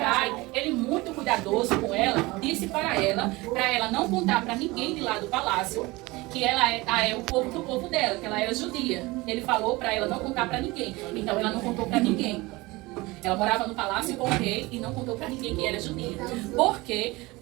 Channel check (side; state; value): left; quieter; 22.0 dB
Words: ele muito cuidadoso com ela, disse para ela não contar para ninguém de lá do palácio que ela é o povo do povo dela, que ela era judia. Ele falou para ela não contar para ninguém. Então ela não contou para ninguém. Ela morava no palácio com o rei e não contou para ninguém que era judia. Porque